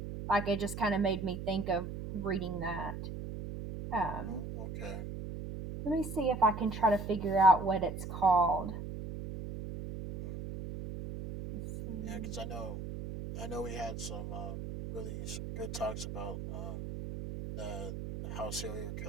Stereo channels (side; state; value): right; noise; hum, 7 dB below the sound